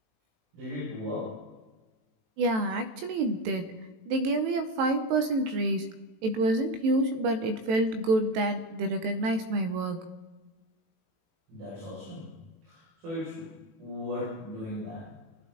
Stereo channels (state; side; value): late; left; 18 ms